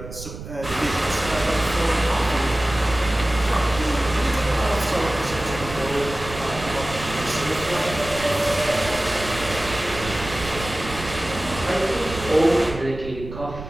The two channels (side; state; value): right; noise; rumble, 11 dB below the sound